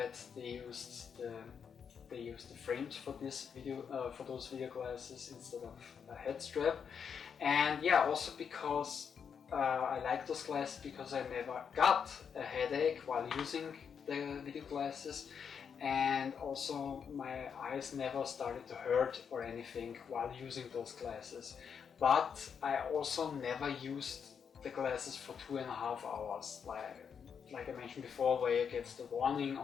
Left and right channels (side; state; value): right; quieter; 7.0 dB